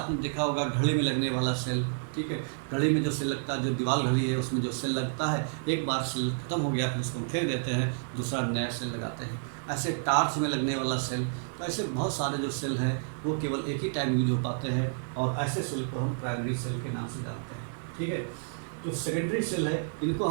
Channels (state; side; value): silent; left; digital silence